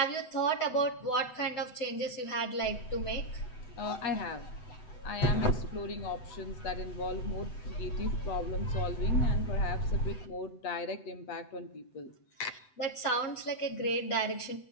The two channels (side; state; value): right; late; 8.0 ms